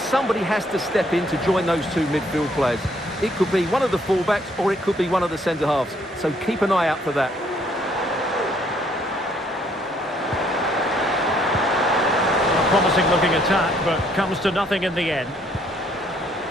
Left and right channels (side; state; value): both; normal; correlation 0.66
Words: has to step in to join those two midfield players. It could be one of the fullbacks or it could be one of the centre-halves. So keep an eye out for that. A promising looking attack, but comes to nothing in the end.